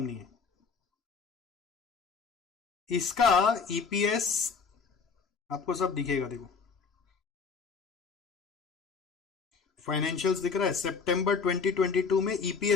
है। इसका ईपीएस आपको सब दिखेगा, देखो फाइनेंशियल्स दिख रहा है। सितंबर 2022 में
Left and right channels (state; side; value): quieter; right; 5.4 dB